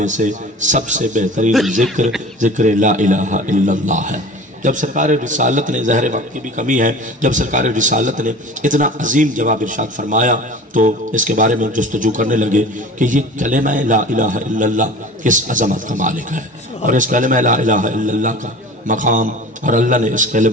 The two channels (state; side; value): normal; both; correlation 0.40